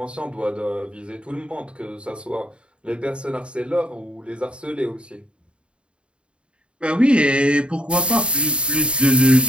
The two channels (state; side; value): late; left; 0.055 ms